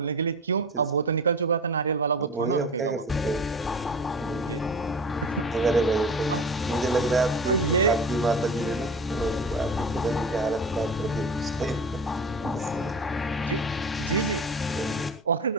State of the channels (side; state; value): both; normal; correlation 0.34